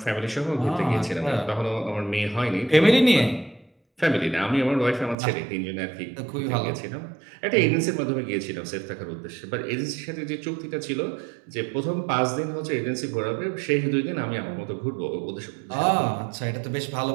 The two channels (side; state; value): left; drops out; at 5.2 s